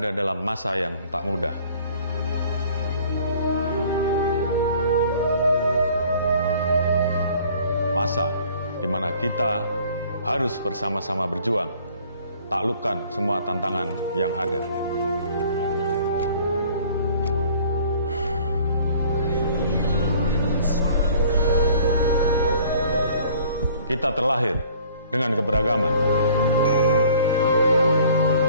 dalam masa yang tak mudah. Masa di mana kita harus bersama-sama berjuang, taklukkan semua tantangan yang ada. Kita terlahir dengan keberagaman.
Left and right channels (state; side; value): inverted; both; correlation -0.53